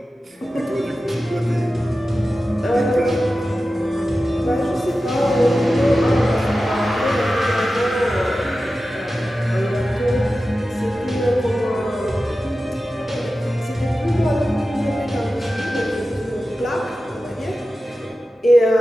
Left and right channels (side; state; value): both; normal; correlation 0.94